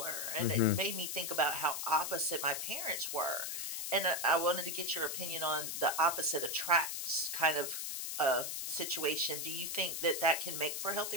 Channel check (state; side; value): noise; left; hiss, 3 dB below the sound